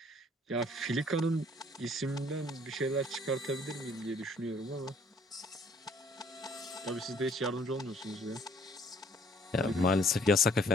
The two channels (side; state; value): both; normal; correlation 0.60